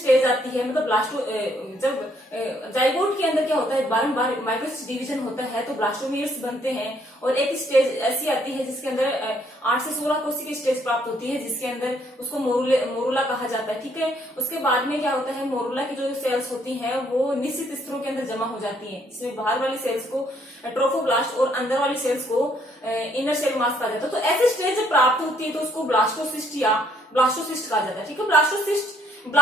आती है, मतलब ब्लास्टो जब जाइगोट के अंदर क्या होता है बारंबार माइटोसिस डिवीजन होता है तो ब्लास्टोमियर्स बनते हैं, और एक स्टेज ऐसी आती है जिसके अंदर 8 से 16 कोशिका की स्टेज प्राप्त होती है जिसके अंदर उसको मोरुला कहा जाता है। ठीक है, उसके बाद में क्या होता है, मोरुला की जो सेल्स होती हैं वो निश्चित स्तरों के अंदर जमा हो जाती हैं, जिसमें बाहर वाली सेल्स को ट्रोफोब्लास्ट और अंदर वाली सेल्स को इनर सेल मास कहा जाता है। तो ऐसी स्टेज जब प्राप्त होती है तो उसको ब्लास्टोसिस्ट या ब्लास्टोसिस्ट कहा जाता है। ठीक है, ब्लास्टोसिस्ट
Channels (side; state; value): both; normal; correlation 0.67